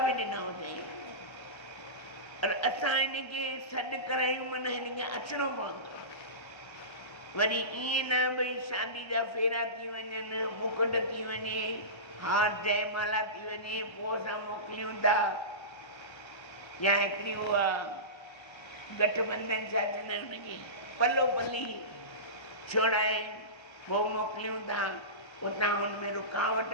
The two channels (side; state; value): right; late; 1.3 ms